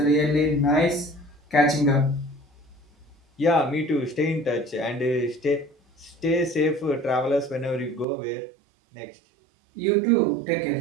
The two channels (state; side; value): drops out; left; at 8.1 s